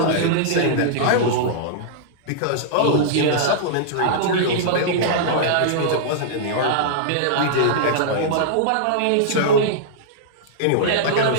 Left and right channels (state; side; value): different; both; correlation -0.02